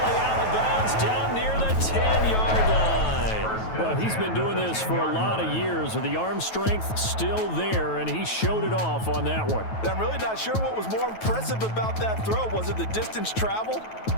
out of bounds down near the 10-yard line. Well, he's been doing this for a lot of years with the arm strength still there, and he showed it off on that one. I'm really not sure what was more impressive about that throw. Was it the distance traveled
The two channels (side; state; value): right; late; 9.2 ms